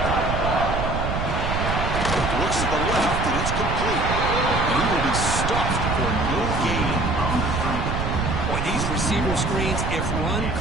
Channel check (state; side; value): noise; right; rumble, 2 dB below the sound